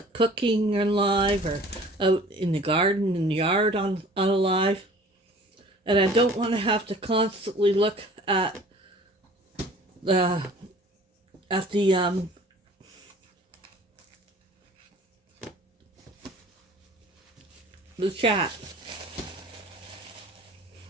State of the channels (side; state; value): both; normal; correlation 0.48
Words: cooking on live or out in the garden, in the yard on a live. And I don't want to have to constantly look at the the chat.